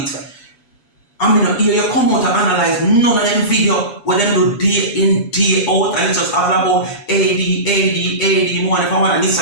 I mean, here you come out and analyze none of them video where them do day in, day out, and it's just all about AD, more if I want a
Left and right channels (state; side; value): late; right; 7.1 ms